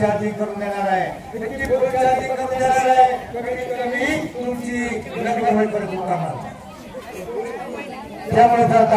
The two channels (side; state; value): both; identical; correlation 1.00